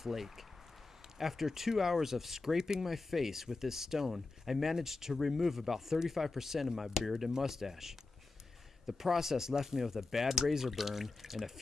After 2 hours of scraping my face with this stone, I managed to remove about 35% of my beard and mustache. The process left me with a bad razor burn and a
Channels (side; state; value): right; quieter; 3.6 dB